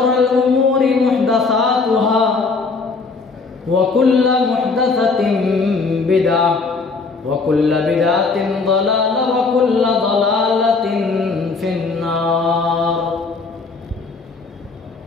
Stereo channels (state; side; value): quieter; right; 4.3 dB